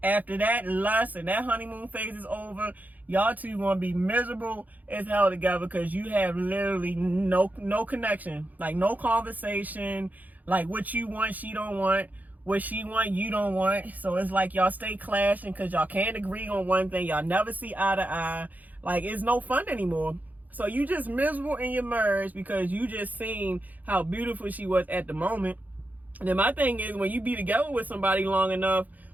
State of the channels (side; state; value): left; late; 0.081 ms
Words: after that lust and that honeymoon phase is over, y'all two gonna be miserable as hell together, because you have literally no connection, like no conversation, like what you want she don't want, what she want you don't want. So it's like y'all stay clashing because y'all can't agree on one thing. Y'all never see eye to eye. Like, it's no fun anymore. So you just miserable in your marriage because you just seen how beautiful she was at the moment. And then my thing is, when you be together with somebody long enough,